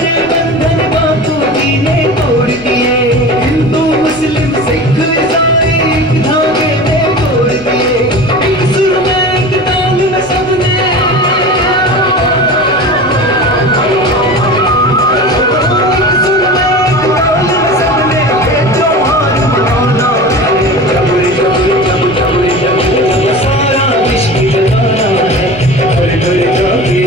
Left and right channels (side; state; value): right; noise; rumble, 21 dB below the sound